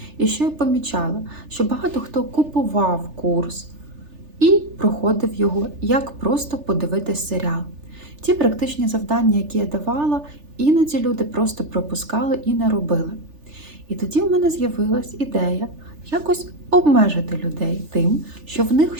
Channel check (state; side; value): late; left; 3.4 ms